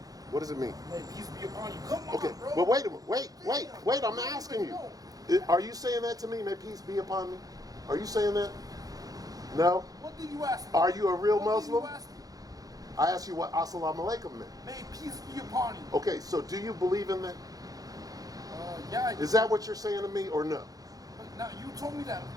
What does it mean? May peace be upon you. Come on, Okay, bro. but wait a minute. Wait. I'm asking you. Are you saying that to me? May peace be upon me? Are you saying that? No. What did you ask me? Are you a real What Muslim? Did you ask me? I asked you what Assalamu alaikum meant. May peace be upon you. Okay, so do you believe in that? Yeah. Is that what you're saying to me or no? But now you told me that.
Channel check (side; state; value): left; late; 0.18 ms